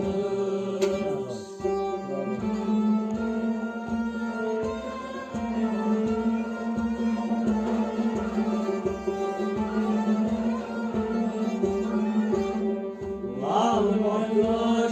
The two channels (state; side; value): identical; both; correlation 1.00